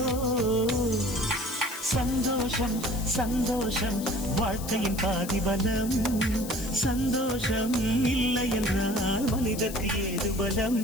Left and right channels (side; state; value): left; noise; hiss, 12 dB below the sound